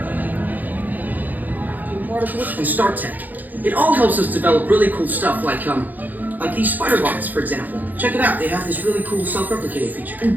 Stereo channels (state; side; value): late; left; 0.084 ms